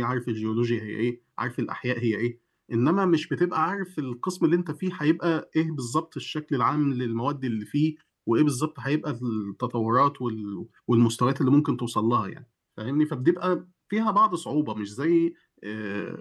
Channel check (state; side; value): identical; both; correlation 1.00